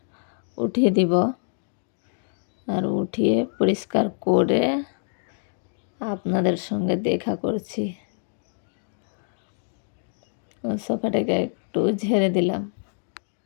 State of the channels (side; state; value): right; silent; digital silence